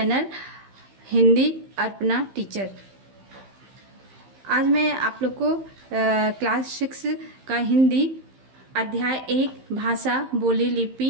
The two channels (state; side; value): late; left; 15 ms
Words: Hindi Arpana teacher. आज मैं आप लोग को क्लास 6 का हिंदी अध्याय 1 भाषा, बोली,